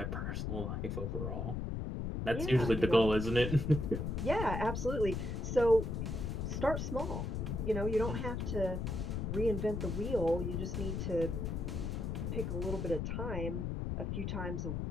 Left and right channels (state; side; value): noise; left; rumble, 2 dB below the sound